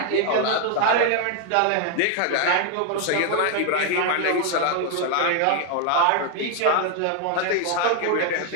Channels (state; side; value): different; both; correlation 0.00